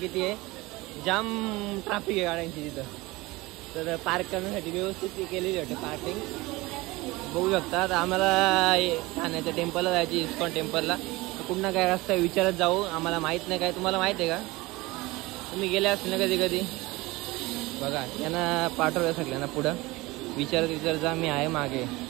आहे, जाम ट्रॅफिक आहे गाड्यांची तिथं. तर पार्क करण्यासाठी व्यवस्थित केलेली वाटते पार्किंग बघू शकता. तर आम्हाला ठाण्याच्या टेम्पलला जायची, इस्कॉन टेम्पलला. तर कुठं काय रस्ता विचारत जाऊ, आम्हाला माहीत नाही. काय तुम्हाला माहीत आहे का? तुम्ही गेले असेल ना कधी कधी बघा. यांना पाठवलं सगळ्यांना पुढं विचारत जा, मी आहे मागे.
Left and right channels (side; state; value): left; quieter; 21.4 dB